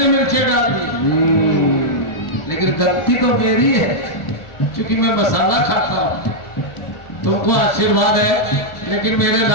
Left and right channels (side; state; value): right; late; 1.4 ms